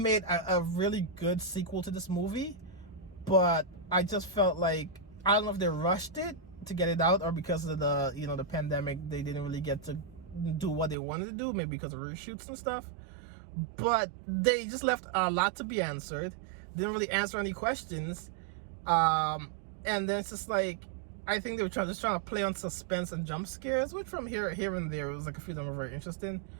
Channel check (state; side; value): drops out; left; at 11.0 s